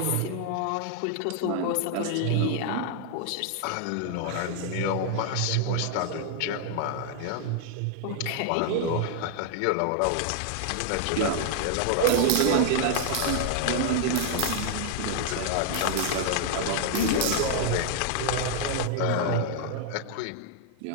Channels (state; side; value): different; both; correlation 0.00